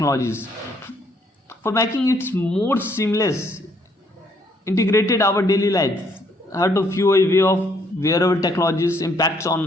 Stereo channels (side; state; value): both; normal; correlation 0.68